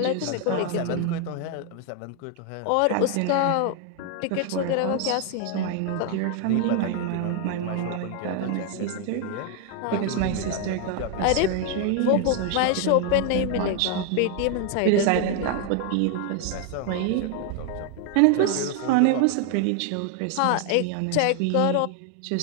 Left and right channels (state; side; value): different; both; correlation 0.00